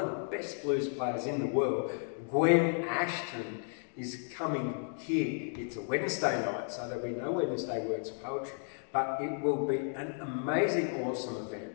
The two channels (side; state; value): right; silent; 55 dB below the other